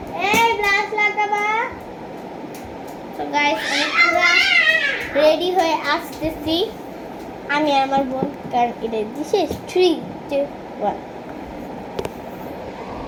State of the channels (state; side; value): identical; both; correlation 1.00